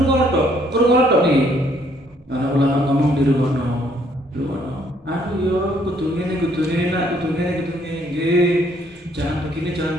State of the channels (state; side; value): normal; both; correlation 0.66